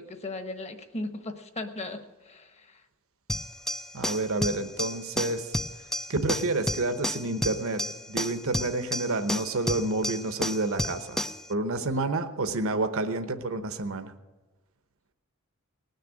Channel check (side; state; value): both; normal; correlation 0.16